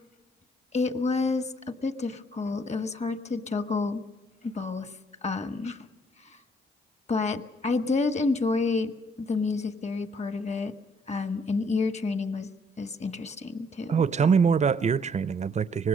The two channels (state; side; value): normal; both; correlation 0.66